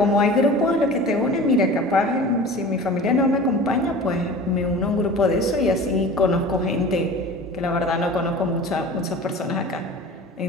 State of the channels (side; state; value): both; normal; correlation 0.38